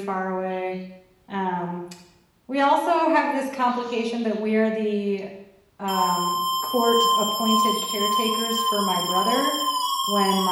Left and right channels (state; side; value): identical; both; correlation 1.00